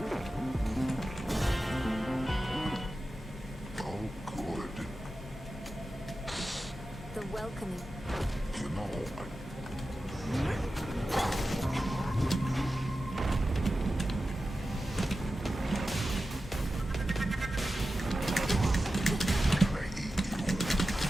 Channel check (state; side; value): normal; both; correlation 0.93